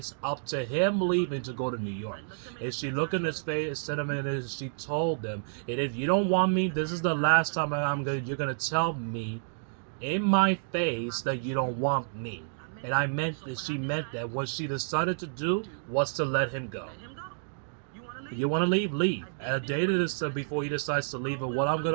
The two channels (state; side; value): silent; left; digital silence